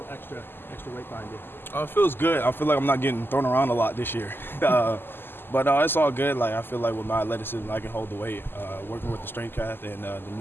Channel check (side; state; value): right; late; 0.10 ms